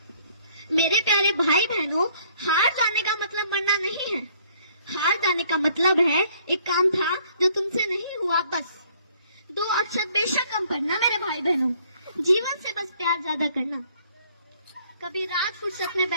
मेरे प्यारे भाई बहनों, हार जाने का मतलब मरना नहीं है। हार जाने का मतलब है एक काम था जो तुमसे नहीं हुआ, बस 2 अक्षर बेशक कम पढ़ना मेरे भाई बहनों, जीवन से बस प्यार ज्यादा करना, कभी रात फुर्सत में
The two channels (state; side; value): inverted; both; correlation -0.61